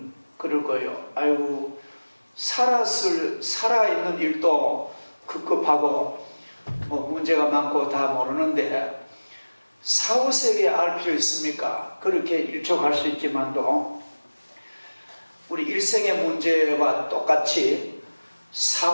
그럴 거예요. 아이고, 살아있는 일도 급급하고 문제가 많고 다 모르는데 사후 세계에 알 필요 있습니까? 그렇게 일촉할 수 있지만도 우리 일생의 문제와 똑같이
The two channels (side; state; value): both; inverted; correlation -1.00